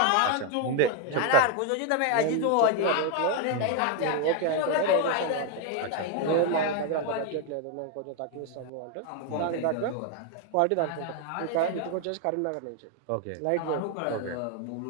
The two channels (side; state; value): both; different; correlation 0.01